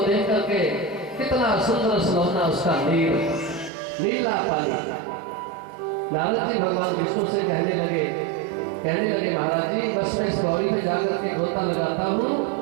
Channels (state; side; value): drops out; left; at 3.7 s